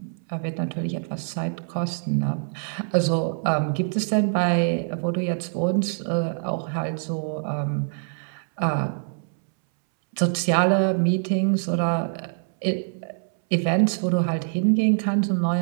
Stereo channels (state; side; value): silent; left; 62 dB below the other